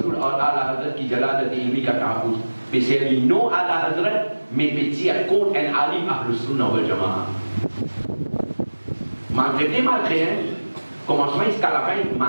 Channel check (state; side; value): inverted; both; correlation -1.00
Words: और आला हजरत की जलालत इल्मी का तहफ़्फ़ुज़ बेशर्मी नो आला हजरत में पेचिया कौन एन आलिम अहले सुन्नत वल जमाअह malgré commencement jusqu'à la fin